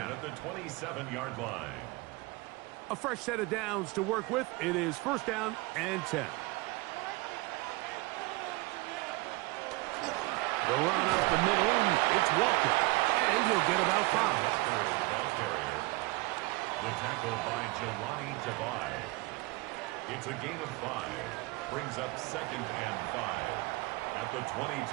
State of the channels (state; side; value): quieter; left; 23.0 dB